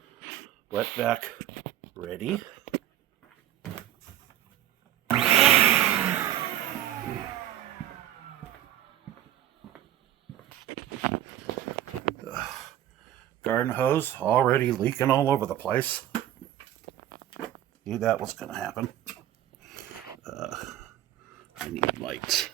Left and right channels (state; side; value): quieter; left; 12.4 dB